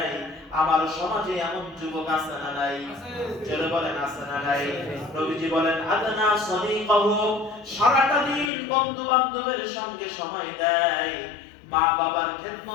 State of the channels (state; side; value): drops out; right; at 8.5 s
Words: আমার সমাজে এমন যুবক আছে না নাই? চলে বলেন আছে না নাই? নবীজি বলেন আদনা সাদিকাহু। সারাটা দিন বন্ধু বান্ধবের সঙ্গে সময় দেয়, মা বাবার